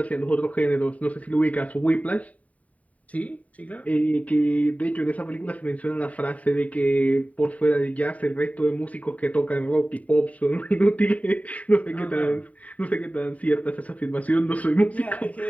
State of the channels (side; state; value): right; late; 0.069 ms